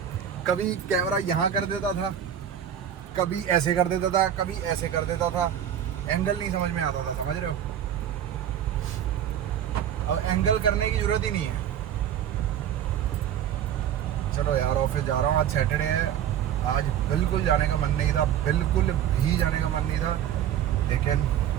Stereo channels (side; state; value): left; quieter; 9.9 dB